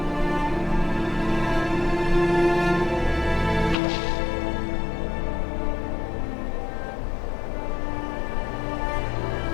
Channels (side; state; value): right; drops out; at 3.8 s